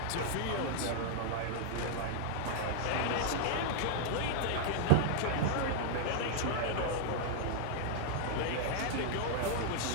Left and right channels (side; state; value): both; different; correlation 0.00